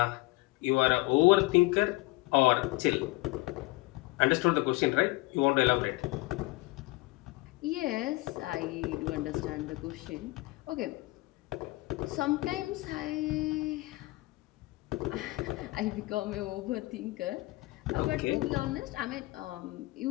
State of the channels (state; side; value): quieter; right; 22.2 dB